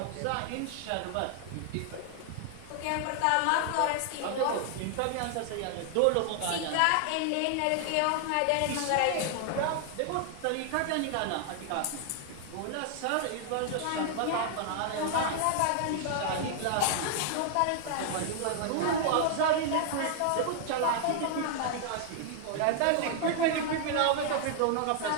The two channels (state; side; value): different; both; correlation 0.00